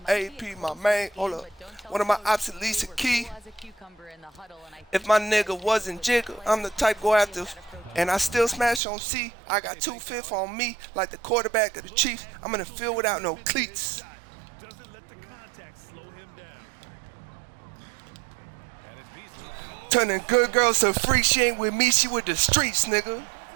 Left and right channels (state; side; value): drops out; left; at 8.8 s